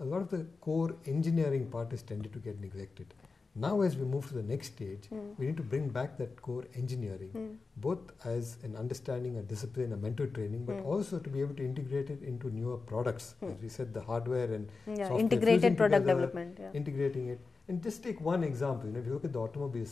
a lot of the core engineering part has tended to get neglected. Now as we move to the next stage, we need to bring back that core engineering, both as an understanding, a discipline, a mental training, but also to be able to integrate it into newer products. As we said, the hardware and software, integrated product together, development. Integrating it. And just take one example, you know, if you look at the automobile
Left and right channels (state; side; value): quieter; right; 4.2 dB